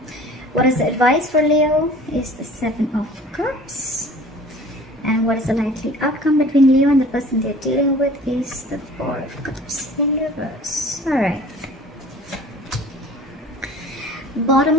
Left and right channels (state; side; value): normal; both; correlation 0.46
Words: What is the advice for Leo? Is the Seven of Cups. And what is the likely outcome between Leo and the person they're dealing with? Is the Four of Cups in reverse. Alright. Bottom